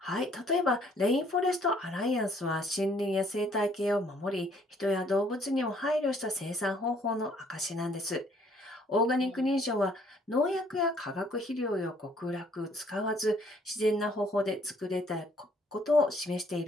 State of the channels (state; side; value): normal; both; correlation 0.62